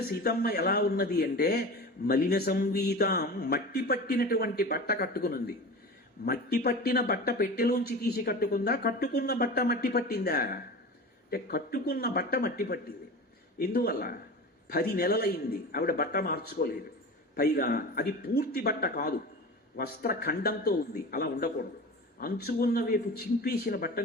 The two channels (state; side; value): normal; both; correlation 0.32